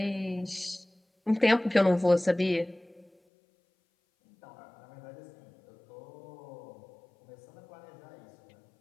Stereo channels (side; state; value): right; drops out; at 3.1 s